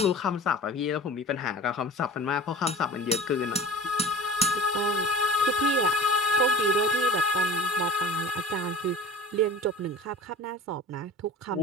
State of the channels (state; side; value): normal; both; correlation 0.40